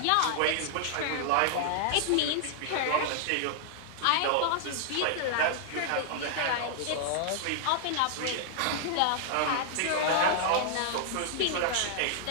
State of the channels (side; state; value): both; different; correlation -0.01